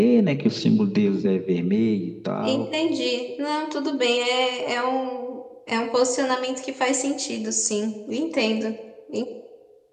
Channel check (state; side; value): identical; both; correlation 1.00